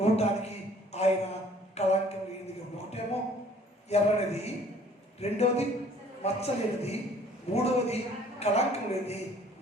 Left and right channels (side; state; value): both; normal; correlation 0.56